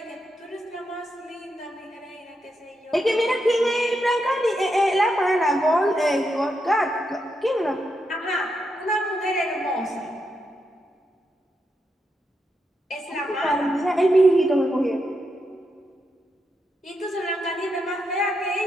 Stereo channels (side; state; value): both; normal; correlation 0.83